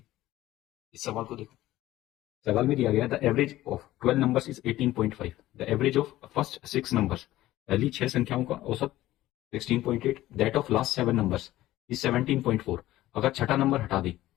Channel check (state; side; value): quieter; right; 15.5 dB